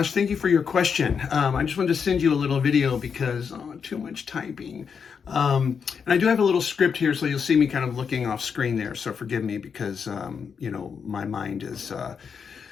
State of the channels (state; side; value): quieter; right; 6.4 dB